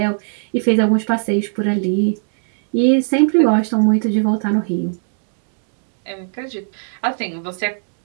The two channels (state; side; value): silent; left; 66 dB below the other